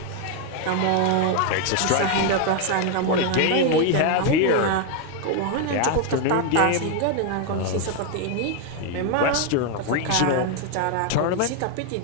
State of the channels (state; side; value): different; both; correlation 0.01